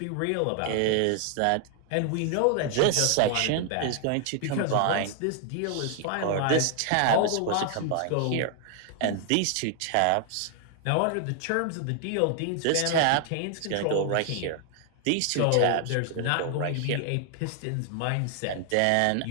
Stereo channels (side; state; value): both; different; correlation 0.00